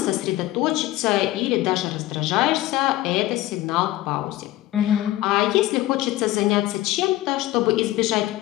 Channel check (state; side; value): quieter; right; 16.1 dB